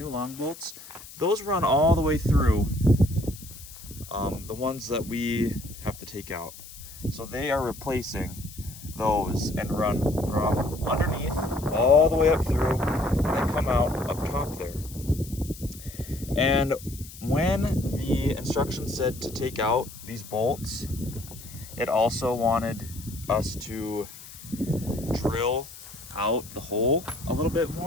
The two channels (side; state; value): left; noise; hiss, 16 dB below the sound